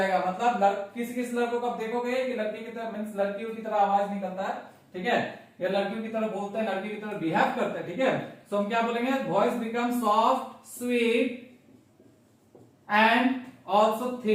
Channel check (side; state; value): both; identical; correlation 1.00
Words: मतलब किस लड़कों को आप देखोगे कि लड़की की तरह, मींस लड़कियों की तरह आवाज निकलता है, ठीक है, या लड़कियों की तरह बोलते हैं, लड़की की तरह बिहेव करते हैं, ठीक है। सो हम क्या बोलेंगे, voice become soft, sweet and also